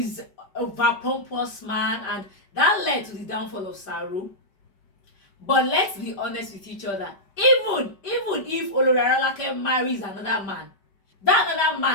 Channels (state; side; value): late; right; 5.1 ms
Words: over-pompous man, and that led to the downfall of Saro. But let's be honest with each other. Even if Arolake marries another man, that another